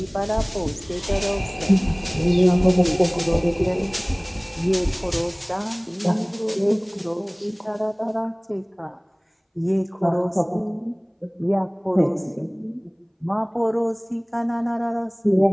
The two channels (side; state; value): both; identical; correlation 1.00